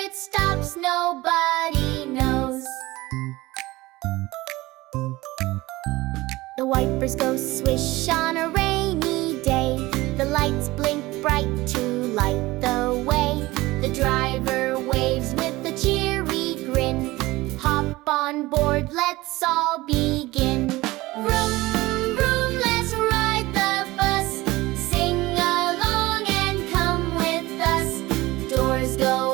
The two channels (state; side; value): quieter; left; 19.6 dB